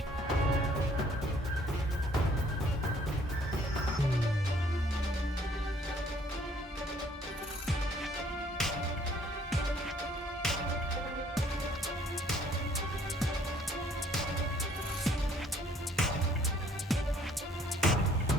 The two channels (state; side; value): normal; both; correlation 0.61